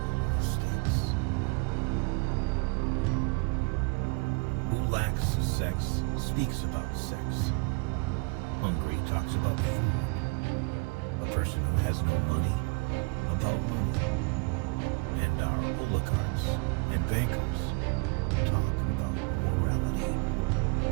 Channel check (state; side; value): quieter; left; 30.8 dB